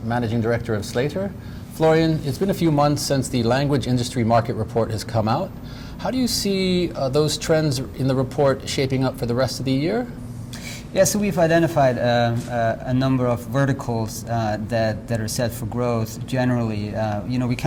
Managing Director of Slator. Florian, it's been a few months since the language industry market report has come out. How do you see those trends in the report shaping up for the rest of the year? Yeah, so we've identified a number of verticals that are set for growth. Generally, we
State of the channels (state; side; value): identical; both; correlation 1.00